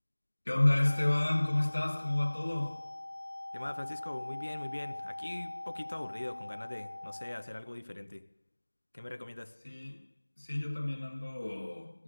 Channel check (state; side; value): inverted; both; correlation -1.00